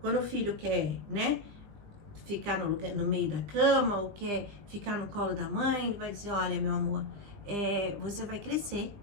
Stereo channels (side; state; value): left; late; 19 ms